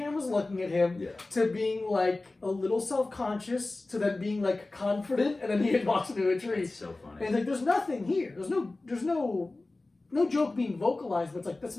looking at him, Yeah. to being like a little self-conscious, to then being like confident, and then he walks into a tree. It's so And funny. it's like there's nothing here. There's no joke being vocalized, but it's like that's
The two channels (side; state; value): right; quieter; 3.1 dB